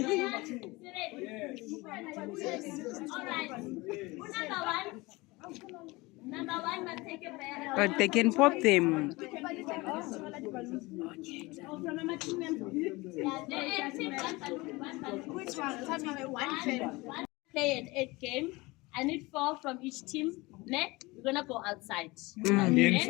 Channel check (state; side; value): quieter; right; 22.8 dB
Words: All right. Number one must take a bear. But they can pop them. Which one? Tell me one. Play an 8 game. I need 4 from each team. Next, we're gonna go outside. You